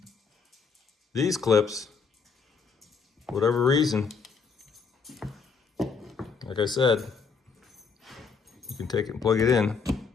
These clips, whatever reason, like I said, you can take it and plug it in.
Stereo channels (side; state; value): right; quieter; 5.4 dB